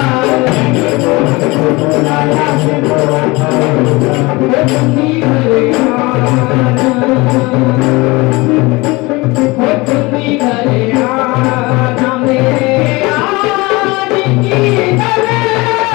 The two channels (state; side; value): quieter; right; 23.4 dB